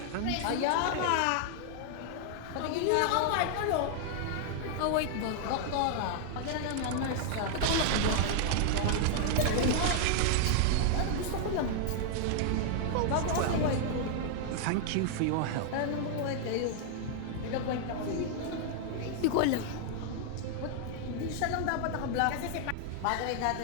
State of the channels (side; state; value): both; different; correlation 0.00